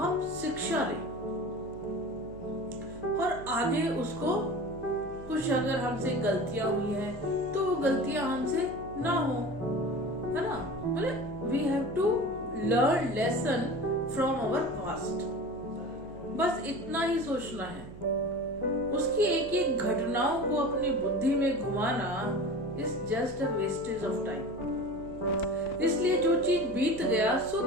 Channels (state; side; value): noise; right; hum, 16 dB below the sound